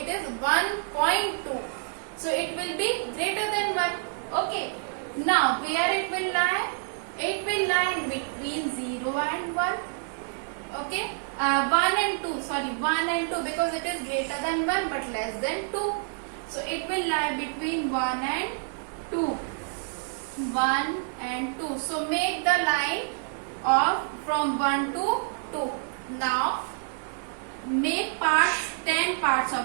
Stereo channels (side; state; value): left; silent; 59 dB below the other